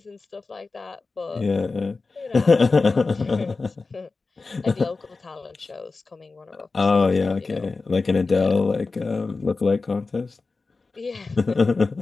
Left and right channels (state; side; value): quieter; right; 3.9 dB